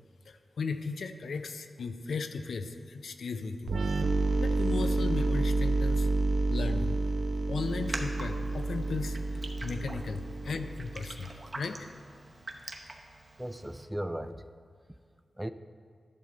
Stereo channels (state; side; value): normal; both; correlation 0.92